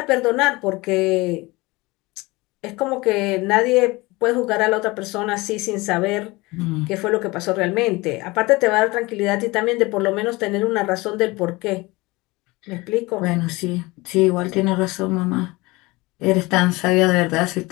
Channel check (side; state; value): right; quieter; 22.6 dB